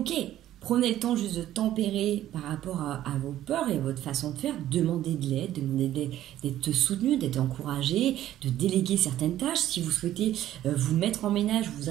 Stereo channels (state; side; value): quieter; left; 12.9 dB